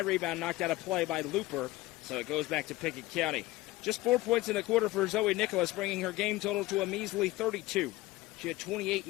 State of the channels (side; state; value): right; quieter; 18.2 dB